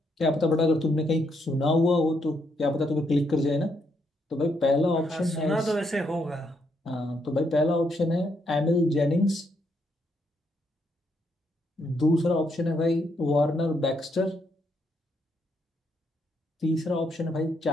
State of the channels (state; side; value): normal; both; correlation 0.76